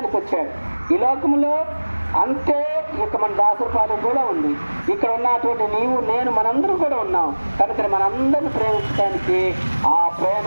వచ్చాడు. ఈ లోకంలో అంతే ఇక మన దాసరపాలెం కూడా ఉంది, ఇక్కడ ఉన్నటువంటి నీవు, నేను, మనందరం కూడా ఉన్నాం. కనుక మనందరిని ప్రేమించడానికి ఆ ప్రేమ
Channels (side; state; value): both; inverted; correlation -1.00